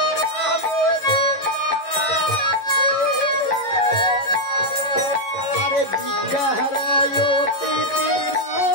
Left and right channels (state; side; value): late; right; 11 ms